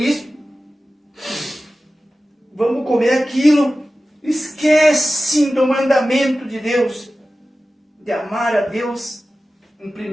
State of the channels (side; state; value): both; normal; correlation 0.95